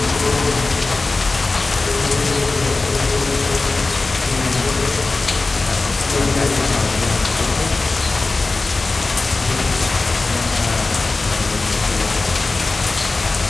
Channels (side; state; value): right; quieter; 3.5 dB